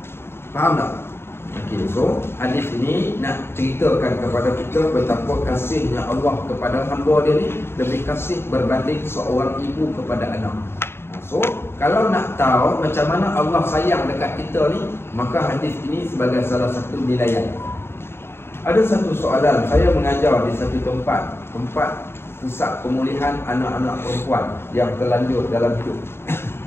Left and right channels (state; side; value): late; right; 0.11 ms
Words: Faham tak? Okey, so hadis ini nak ceritakan kepada kita betapa kasihnya Allah kepada hamba dia ni lebih kasih berbanding seorang ibu kepada anak. So, kalau nak tahu macam mana Allah sayang dekat kita ni, maka hadis ini sebagai salah satu nilaian. Ada satu soalan, saya mengajar di satu tempat pusat pemulihan anak-anak perempuan yang terlanjur dalam hidup.